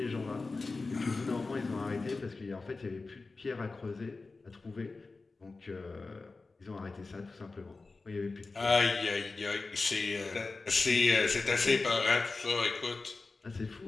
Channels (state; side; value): quieter; right; 3.8 dB